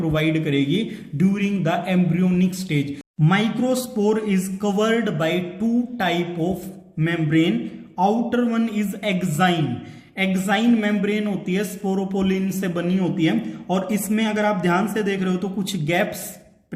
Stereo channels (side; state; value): both; identical; correlation 1.00